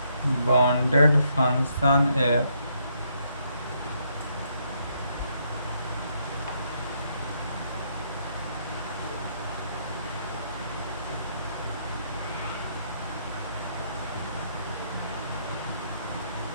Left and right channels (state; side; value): inverted; both; correlation -0.74